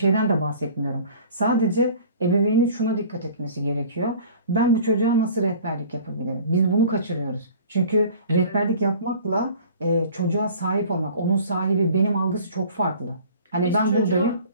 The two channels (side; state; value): both; inverted; correlation -0.46